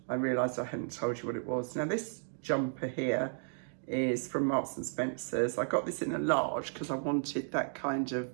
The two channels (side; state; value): left; silent; digital silence